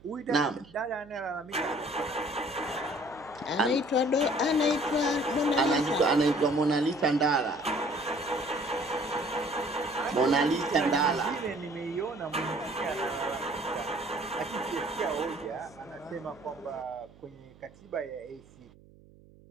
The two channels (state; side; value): noise; right; hum, 25 dB below the sound